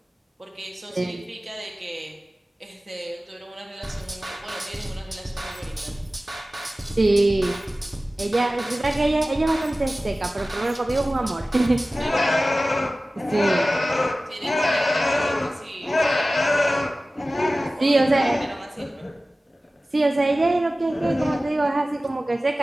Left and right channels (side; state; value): both; normal; correlation 0.96